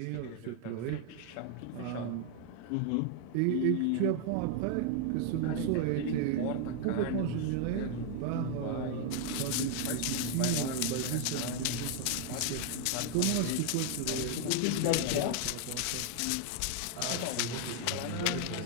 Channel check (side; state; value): both; different; correlation 0.00